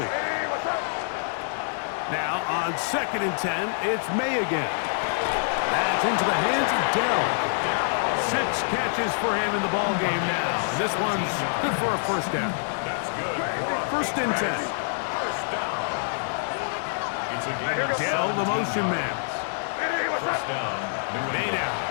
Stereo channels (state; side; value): silent; right; digital silence